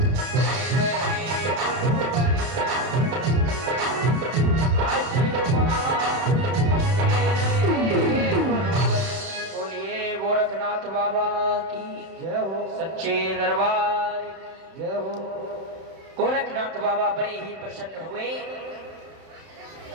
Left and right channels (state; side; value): late; left; 31 ms